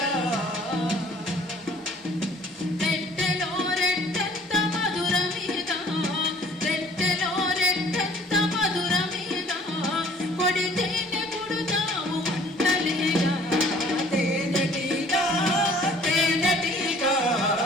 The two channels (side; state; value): both; normal; correlation 0.54